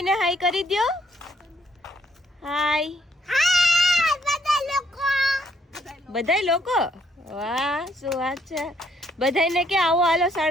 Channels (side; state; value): both; normal; correlation 0.70